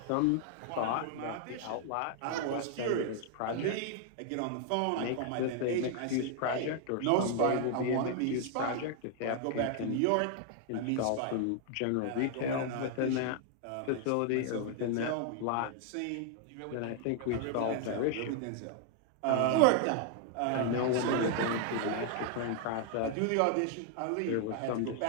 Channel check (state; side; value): different; both; correlation 0.00